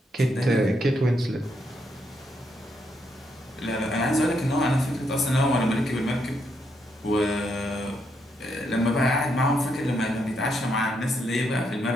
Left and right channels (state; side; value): normal; both; correlation 0.78